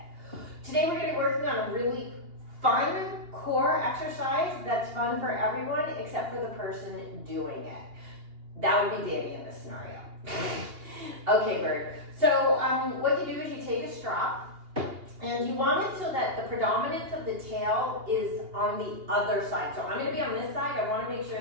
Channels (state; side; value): late; left; 2.8 ms